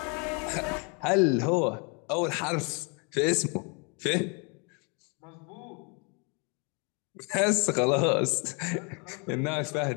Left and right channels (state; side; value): quieter; right; 33.7 dB